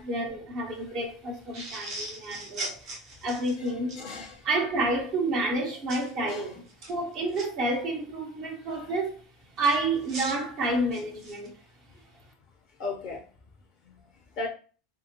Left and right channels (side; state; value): both; normal; correlation 0.41